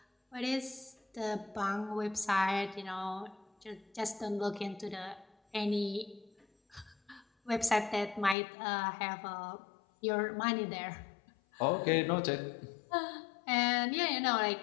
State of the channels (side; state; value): right; drops out; at 8.3 s